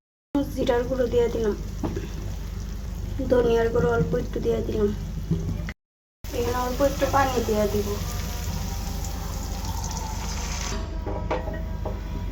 জিরার গুঁড়ো দিয়ে দিলাম, ধনিয়ার গুঁড়ো অল্প একটু দিয়ে দিলাম। এখানে অল্প একটু পানি দিয়ে দিব।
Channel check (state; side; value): identical; both; correlation 1.00